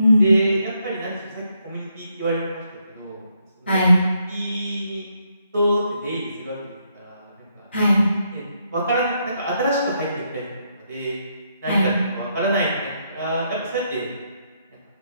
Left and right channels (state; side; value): inverted; both; correlation -0.77